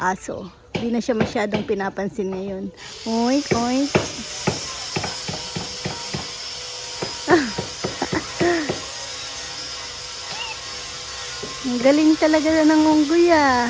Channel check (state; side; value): identical; both; correlation 1.00